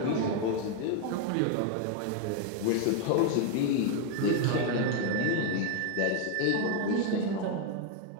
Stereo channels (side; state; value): both; different; correlation 0.01